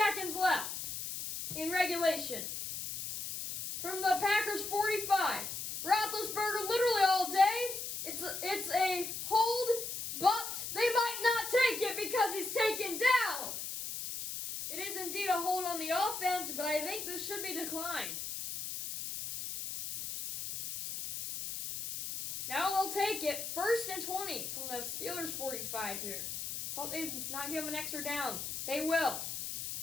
left in regulation. From the Packers 45, Roethlisberger literally all day. It's a hold, but they might not take it because he's taken down. It is indeed a hold on the offense, but I think this should be declined. Now they'll take it. 1st and 20 from the Steelers 45 here. Thought they'd not give him an extra down. They will.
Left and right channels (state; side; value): noise; left; hiss, 5 dB below the sound